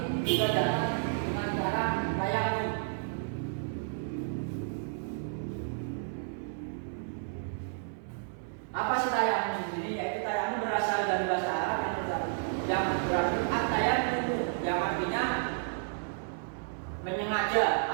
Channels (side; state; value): left; silent; 57 dB below the other